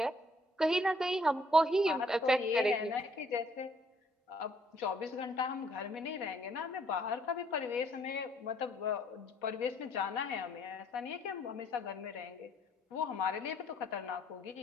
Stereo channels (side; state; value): both; normal; correlation 0.64